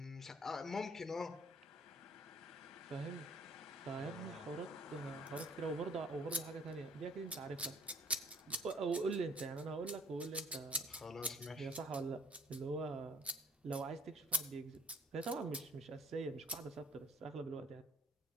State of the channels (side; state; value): both; normal; correlation 0.58